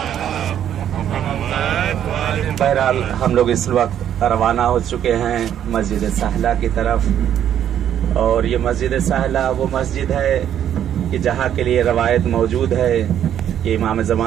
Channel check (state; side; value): quieter; left; 10.1 dB